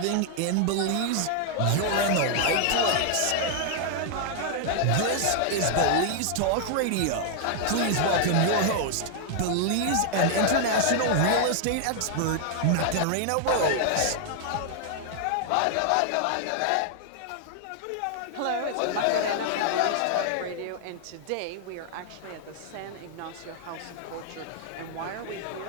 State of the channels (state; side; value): different; both; correlation 0.00